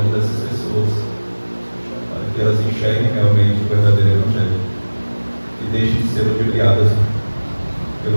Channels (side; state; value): both; inverted; correlation -1.00